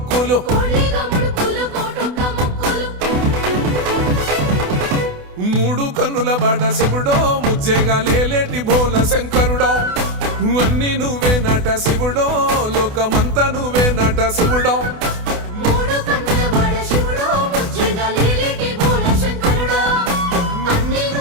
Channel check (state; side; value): late; left; 28 ms